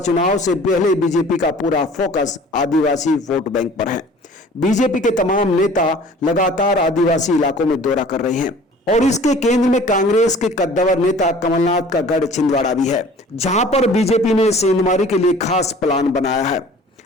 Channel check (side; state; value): both; normal; correlation 0.48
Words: से पहले बीजेपी का पूरा फोकस आदिवासी वोट बैंक पर है। बीजेपी के तमाम नेता लगातार आदिवासी इलाकों में दौरा कर रहे हैं और इसके केंद्र में कांग्रेस के कद्दावर नेता कमलनाथ का गढ़ छिंदवाड़ा भी है, जहां पर बीजेपी ने सेंधमारी के लिए खास प्लान बनाया है